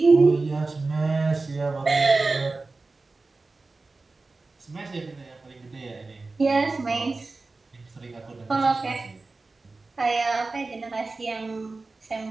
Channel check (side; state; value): left; quieter; 3.6 dB